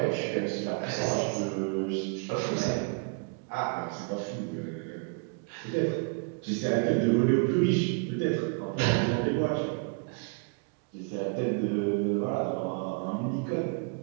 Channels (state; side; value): quieter; left; 38.1 dB